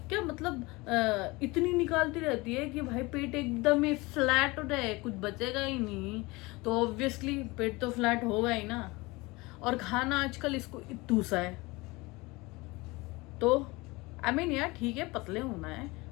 क्या मतलब इतनी निकालती रहती है कि भाई पेट एकदम ही फ्लैट हो जाए, कुछ बचेगा ही नहीं। तो ऑब्वियसली पेट तो फ्लैट होगा ही ना, और खाना आजकल इसको इतू सा है, तो आई मीन यार ठीक है पतले होना है,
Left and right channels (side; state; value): right; quieter; 23.4 dB